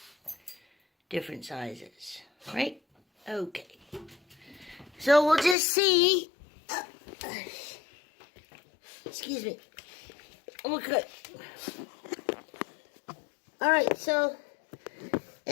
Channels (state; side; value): drops out; right; at 5.6 s